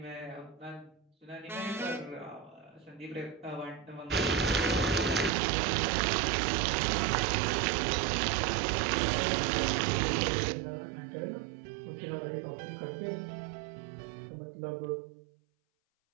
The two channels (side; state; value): left; drops out; at 5.3 s